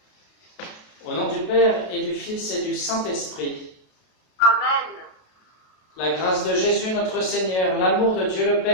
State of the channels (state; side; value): late; right; 32 ms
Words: Au nom du Père et du Fils et du Saint-Esprit. Amen. La grâce de Jésus notre Seigneur, l'amour de Dieu le